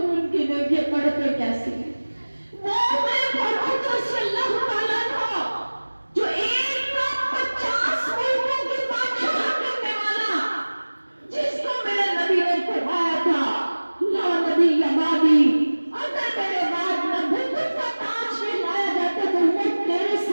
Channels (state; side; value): inverted; both; correlation -1.00